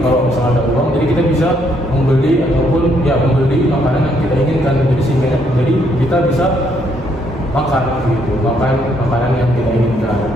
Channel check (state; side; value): normal; both; correlation 0.71